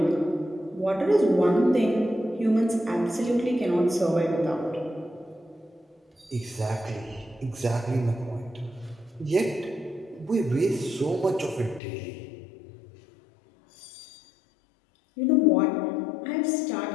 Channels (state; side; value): drops out; right; at 11.8 s